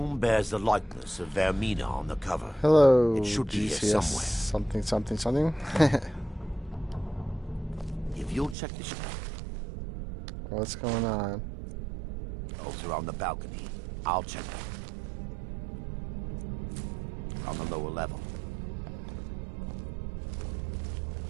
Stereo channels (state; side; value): drops out; left; at 8.6 s